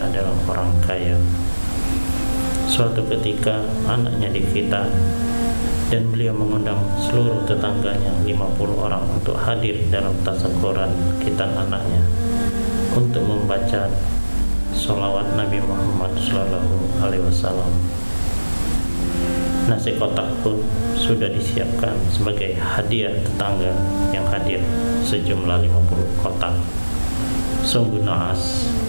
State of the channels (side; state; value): both; inverted; correlation -1.00